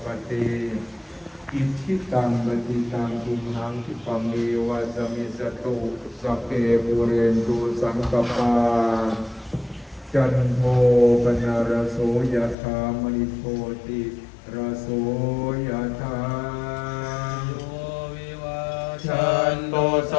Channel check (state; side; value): drops out; right; at 12.6 s